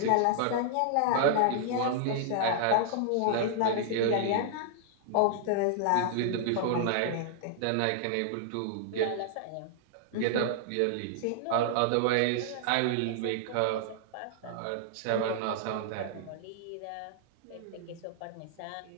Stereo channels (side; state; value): both; different; correlation -0.01